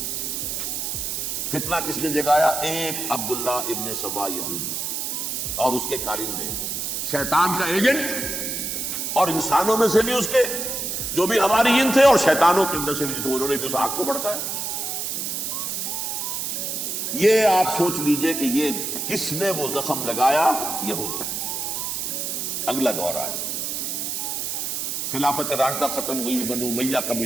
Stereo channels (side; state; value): right; noise; hiss, 3 dB below the sound